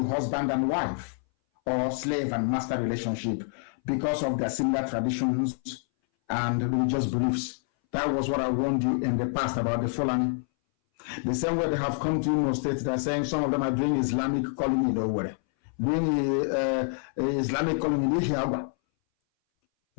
husband and wife or slave and master relationship because of their similar traditions and religious beliefs. That was what I warned you in the past about the Fulani. The same way they have come to Imo State, they're saying some of them are doing Islamic calling in Owerri, doing Islamic calling in Ihiagwa.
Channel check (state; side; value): silent; right; 59 dB below the other